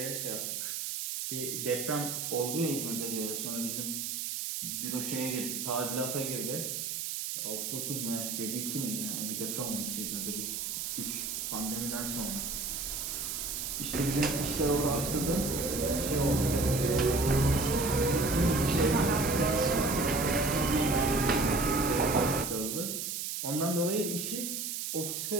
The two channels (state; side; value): noise; right; hiss, 3 dB below the sound